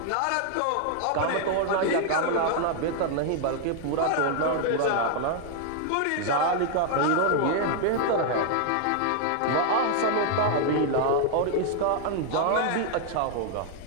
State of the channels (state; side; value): different; both; correlation 0.00